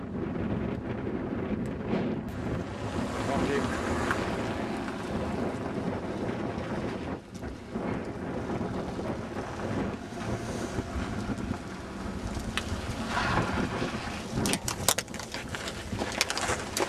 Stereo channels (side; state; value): both; identical; correlation 1.00